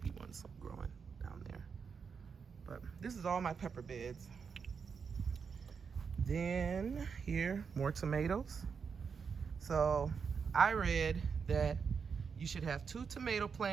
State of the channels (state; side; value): quieter; left; 6.0 dB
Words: ones growing down there. But this is all my pepper beds. Then here, more tomatoes. So I read that you should have 2 tomato